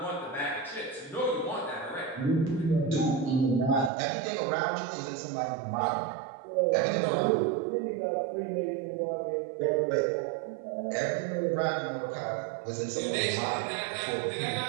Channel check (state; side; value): drops out; left; at 3.9 s